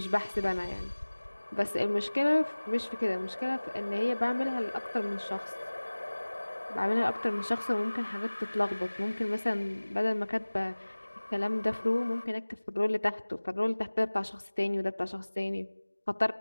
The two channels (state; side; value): inverted; both; correlation -1.00